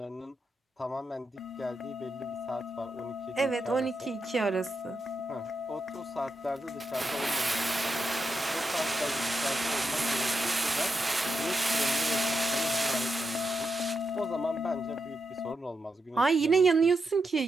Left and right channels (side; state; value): both; normal; correlation 0.85